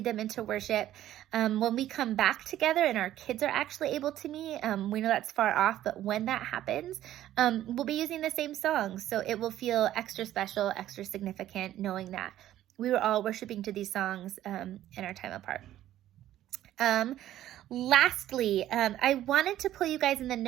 them into worship. When we come back together and our kids are actually able to meet, we know that's far off, but when that happens, we'll be using the same songs. So it will feel extra special, extra significant, knowing that we were all worshiping to these songs in our time apart. Lastly, I wanted to pull you guys in the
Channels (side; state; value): left; quieter; 12.9 dB